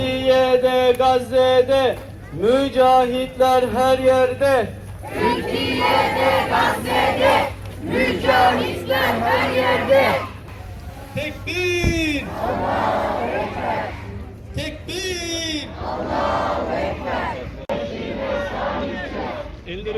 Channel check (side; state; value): both; identical; correlation 1.00